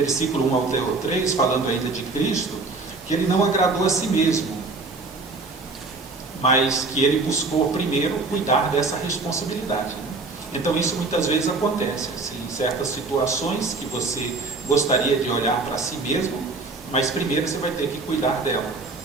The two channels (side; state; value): left; quieter; 3.7 dB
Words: 1 ao 3, falando ainda de Cristo, que ele não agradou a si mesmo, mas que ele buscou primeiro cuidar dessa responsabilidade. Então isso muitas vezes acontece, assim, em certas situações que você gostaria de olhar para si mesmo, mas primeiro você vai ter que cuidar dela,